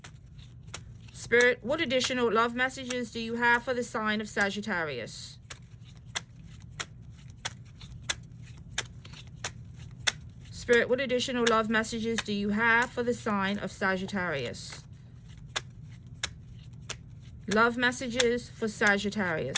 Spirit, what additional love messages do you have for the sign of Sagittarius? Spirit, what additional love messages do you have for the sign of Sagittarius? Love messages for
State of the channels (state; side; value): identical; both; correlation 1.00